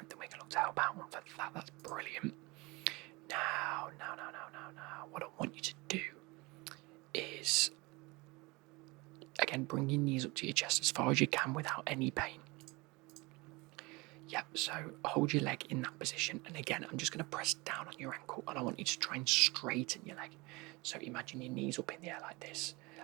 we can look to help out on for that. That's brilliant. Now, what I want you to do is, again, bring your knees up to your chest as far as you can without any pain. Yep, so hold your leg in that position, and again, I'm just going to press down on your ankle, and I want you to try and straighten your leg. So imagine your knees up in the air like this.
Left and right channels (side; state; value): left; quieter; 24.5 dB